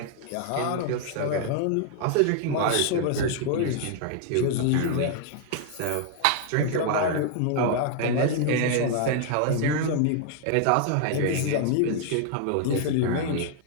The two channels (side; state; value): both; different; correlation 0.00